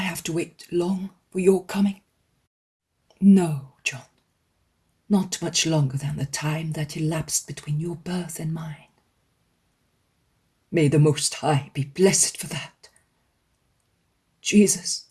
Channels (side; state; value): both; identical; correlation 1.00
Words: to wait long for your coming?" "No, John, not much longer than the time that elapsed between your birth and mine." "May the Most High be blessed for that. Jesus,